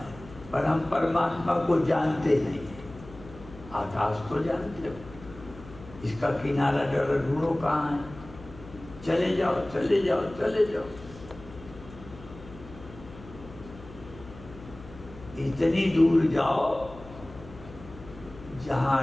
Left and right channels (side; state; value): left; noise; hum, 17 dB below the sound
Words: पर हम परमात्मा को जानते नहीं है। आकाश को जानते हो, इसका किनारा जरा ढूंढो कहाँ है। चले जाओ, चले जाओ, चले जाओ। इतनी दूर जाओ